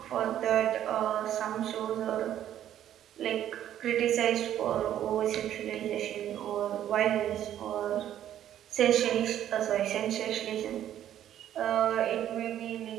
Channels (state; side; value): quieter; left; 11.2 dB